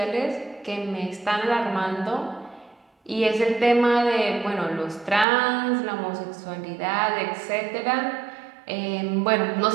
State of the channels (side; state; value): left; drops out; at 5.2 s